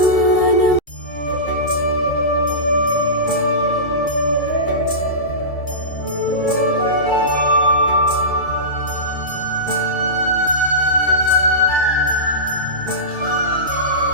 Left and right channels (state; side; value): late; right; 2.3 ms